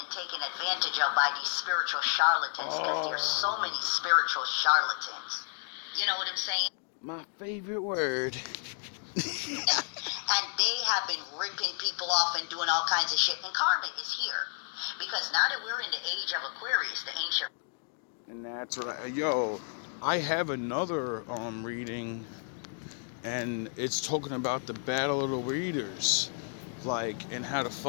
taken advantage of by these spiritual charlatans, because there's so many spiritual charlatans. You know what I'm saying? My favorite word. And they have been ripping people off and doing all kinds of shit. And karma is here. Because now that we're in the age of Aquarius, the ancient... And that's right. I have another reading, and it's talking about the battle of the readers. And how the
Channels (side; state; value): right; silent; 57 dB below the other